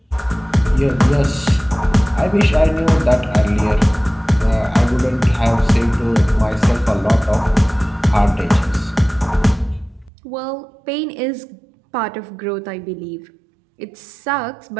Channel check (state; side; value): drops out; left; at 10.1 s